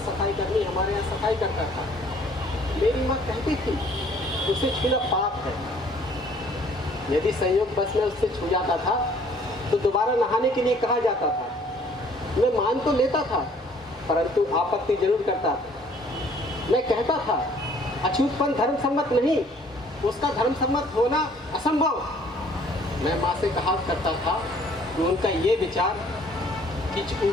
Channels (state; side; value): normal; both; correlation 0.58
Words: सफाई कर्मी हमारे यहाँ सफाई करता था। मेरी माँ कहती थी उसे छूना पाप है। यदि संयोग बस में उससे छू जाता था तो दोबारा नहाने के लिए कहा जाता था। मैं मान तो लेता था, परंतु आपत्ति जरूर करता था। मैं कहता था अछूतपन धर्म सम्मत नहीं, उसका धर्म सम्मत होना असंभव। मैं माँ से कहा करता था कि उनका ये विचार कि